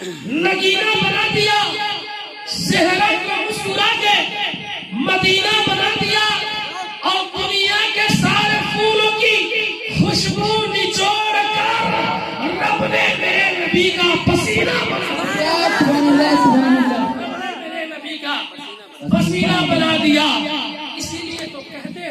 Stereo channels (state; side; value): identical; both; correlation 1.00